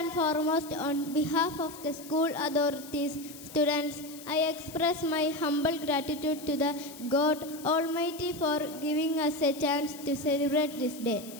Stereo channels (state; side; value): noise; left; hiss, 16 dB below the sound